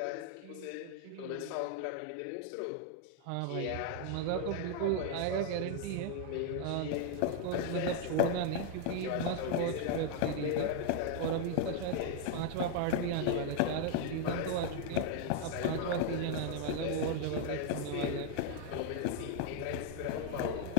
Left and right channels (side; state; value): both; different; correlation 0.00